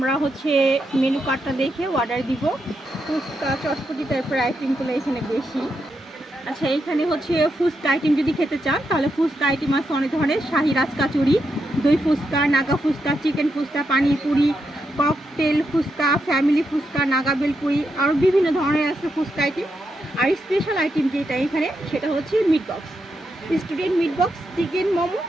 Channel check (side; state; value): both; normal; correlation 0.83